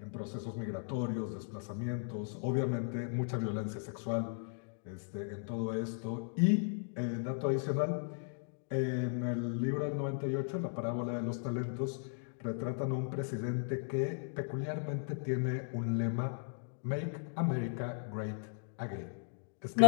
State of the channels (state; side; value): silent; right; digital silence